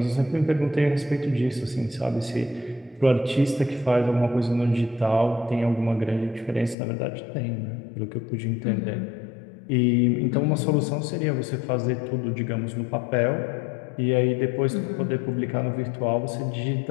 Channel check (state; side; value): drops out; right; at 6.8 s